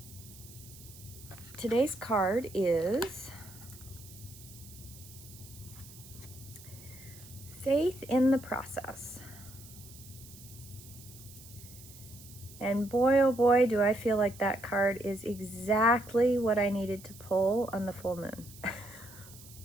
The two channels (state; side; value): noise; right; hiss, 19 dB below the sound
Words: today's card is Faith in the Process. And boy, oh boy, do I feel like that card is exactly what I needed to pull on the full moon.